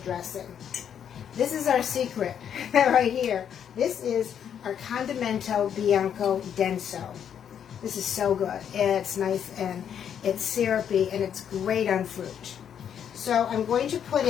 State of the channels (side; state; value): right; quieter; 8.7 dB